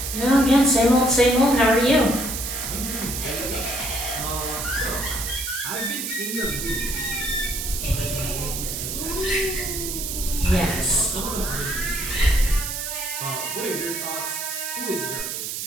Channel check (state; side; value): noise; right; hiss, 4 dB below the sound